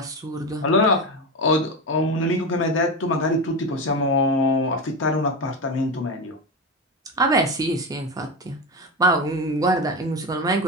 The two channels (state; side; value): normal; both; correlation 0.18